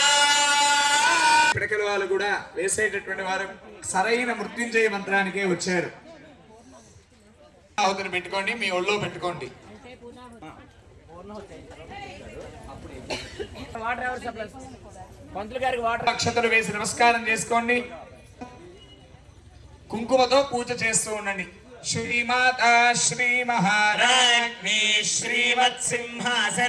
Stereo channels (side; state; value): both; identical; correlation 1.00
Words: పిడకల వాళ్ళు కూడా వేసేటటువంటి వారు సరైన మృత్యుంజయ మంత్రానికే వచ్చారు. ఆహుతిని పెట్టుకోండి, మీ ఒళ్ళో పెట్టుకోండి. అక్షతలు వేసి నమస్కారం చేసుకోండి. కుంకుమతో పూజ చేస్తూ ఉండండి. శ్రీమాత శ్రీ మహారాజ్ఞి శ్రీమత్